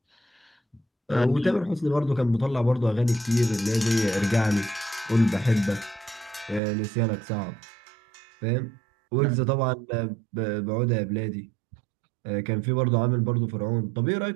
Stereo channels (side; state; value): left; drops out; at 6.6 s